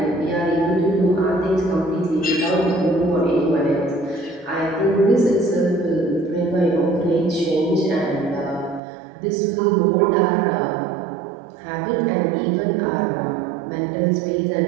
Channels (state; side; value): drops out; left; at 8.8 s